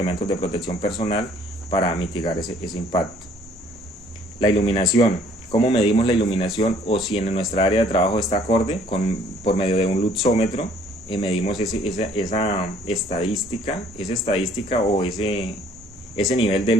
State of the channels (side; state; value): both; normal; correlation 0.59